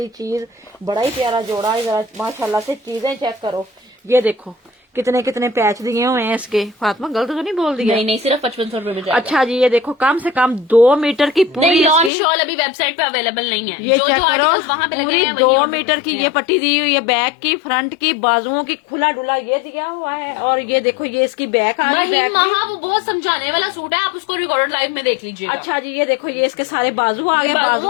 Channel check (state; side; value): drops out; right; at 12.1 s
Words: चीज, बड़ा ही प्यारा जोड़ा है। जरा माशाल्लाह से चीजें चेक करो, ये देखो कितने कितने पैच दिए हुए हैं इसके। फातिमा गलत तो नहीं बोल दिया? नहीं नहीं, सिर्फ 5500 रुपए में जाएगा। अच्छा जी, ये देखो कम से कम 2 मीटर की पूरी लॉन इसकी, शॉल अभी वेबसाइट पे अवेलेबल नहीं है। ये जो चेक जो करो, articles वहाँ पे लगे पूरी हैं, वही 2 order मीटर कर की सकते ये हैं। पट्टी दी हुई है, बैक की, फ्रंट की, बाजुओं की, खुला डुला ये दिया हुआ है। और ये देखो ये इसकी बैक आ गई। वही बैक महा वो बहुत समझाने वाला सूट है, आप उसको रिकॉर्डेड लाइव में देख लीजिएगा। अच्छा जी, ये देखो ये इसके सारे बाजू आ गए। वो